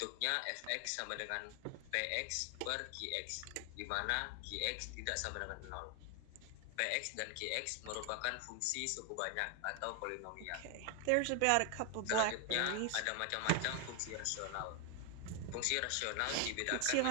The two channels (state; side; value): different; both; correlation 0.00